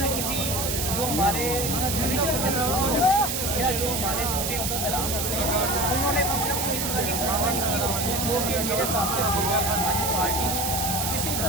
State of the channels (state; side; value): noise; right; hiss, 1 dB below the sound